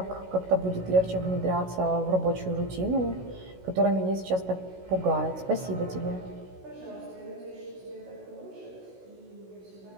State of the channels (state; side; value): late; left; 16 ms